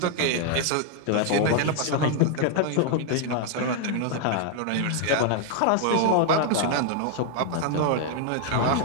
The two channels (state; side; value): different; both; correlation 0.00